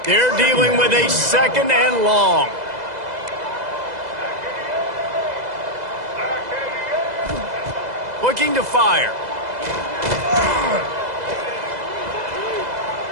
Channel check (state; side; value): late; left; 2.0 ms